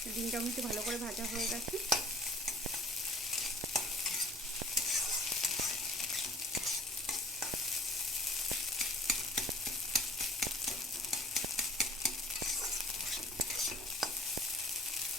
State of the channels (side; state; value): both; normal; correlation 0.49